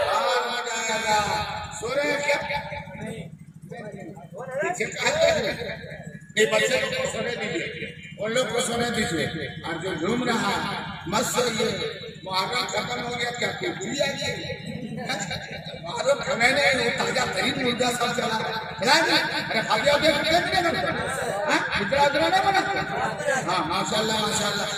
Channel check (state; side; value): identical; both; correlation 1.00